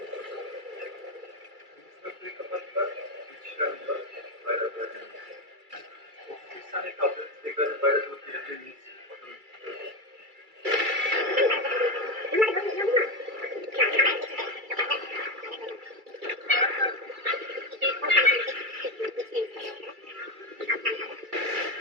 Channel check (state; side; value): late; left; 2.3 ms